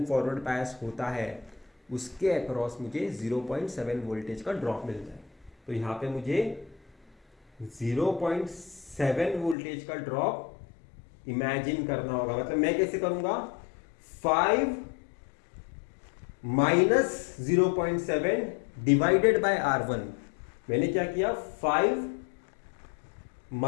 फॉरवर्ड बायस होता है उसके अक्रॉस मुझे 0.7 वोल्टेज का ड्रॉप मिलता है। तो यहाँ पे मुझे 0.7 वोल्टेज का ड्रॉप इमेजिन करना होगा। मतलब मैं कैसे करूंगा, 5 माइनस 0.7 डिवाइडेड बाय R1। मैंने क्या किया, 5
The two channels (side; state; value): right; drops out; at 9.6 s